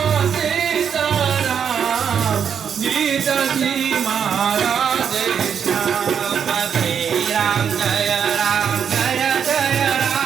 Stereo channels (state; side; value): quieter; left; 7.6 dB